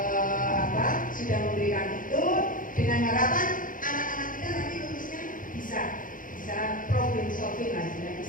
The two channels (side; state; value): right; late; 0.39 ms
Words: sudah memberikan itu dengan harapan anak-anak kita nanti lulusnya bisa problem solving lah,